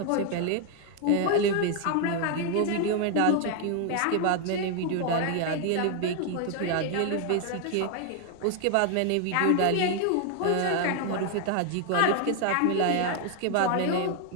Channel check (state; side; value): different; both; correlation 0.00